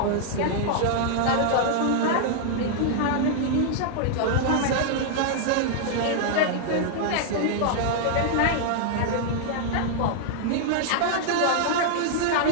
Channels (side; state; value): both; different; correlation -0.01